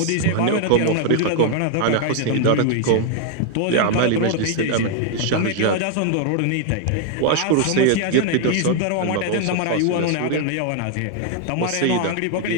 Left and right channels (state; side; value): different; both; correlation 0.00